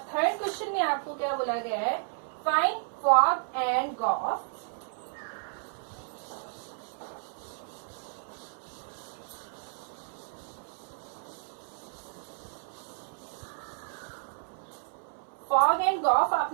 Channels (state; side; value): silent; left; 56 dB below the other